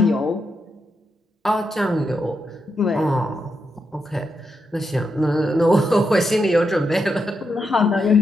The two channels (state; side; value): normal; both; correlation 0.84